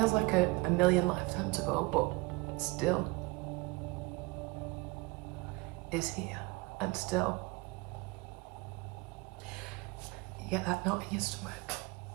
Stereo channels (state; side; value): quieter; left; 24.5 dB